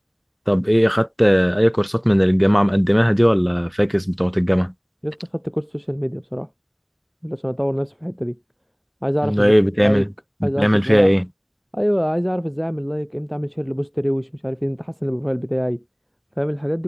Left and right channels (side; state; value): both; identical; correlation 1.00